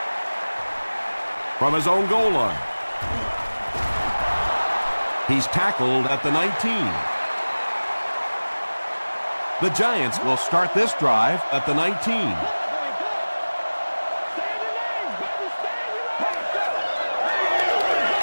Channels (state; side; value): inverted; both; correlation -1.00